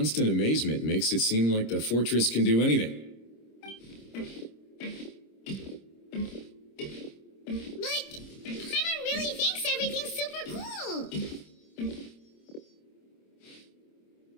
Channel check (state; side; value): late; right; 26 ms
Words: amazement makes it seem like the fortress can do anything. But Paimon really thinks everything's super cool.